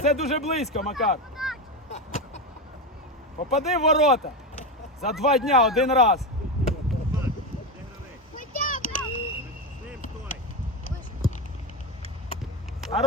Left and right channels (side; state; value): both; normal; correlation 0.15